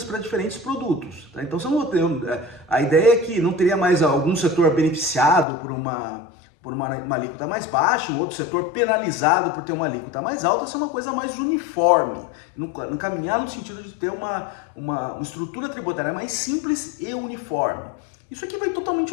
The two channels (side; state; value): right; drops out; at 5.5 s